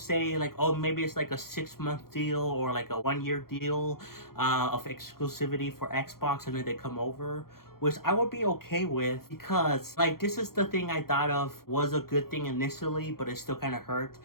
like, oh, maybe it's like a 6-month deal or like a 1-year deal of exclusivity for Xbox, and then they come over, which I would be okay with, because like this is the thing I thought of was a good thing initially, but it still kind of hurt,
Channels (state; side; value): late; right; 0.93 ms